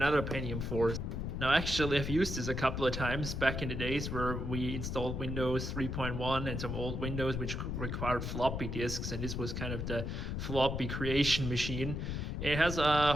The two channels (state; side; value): noise; left; rumble, 3 dB below the sound